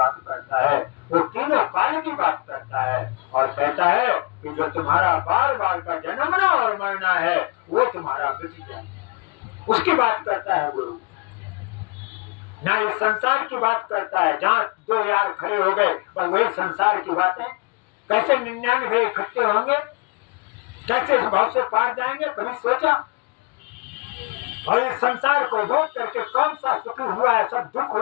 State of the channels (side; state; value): right; quieter; 27.8 dB